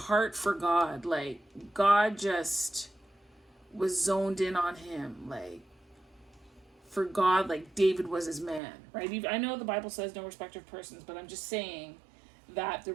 for God. Like, God just was zoned in on him. Like, for God, like David was his man, right? I know the Bible says no respect of persons, but I'm just saying that there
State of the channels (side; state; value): left; drops out; at 8.6 s